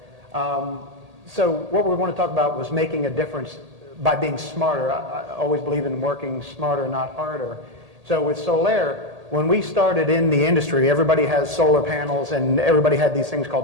So what we want to talk about was making a difference by being smarter. I always believe in working smarter, not harder. So with Solair, when we started in the industry, everybody has solar panels and everybody had these things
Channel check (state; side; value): late; left; 1.8 ms